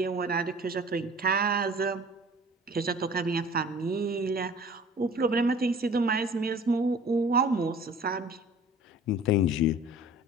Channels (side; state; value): both; normal; correlation 0.47